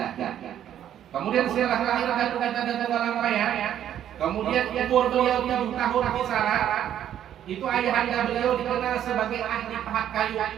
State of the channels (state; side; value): quieter; left; 10.6 dB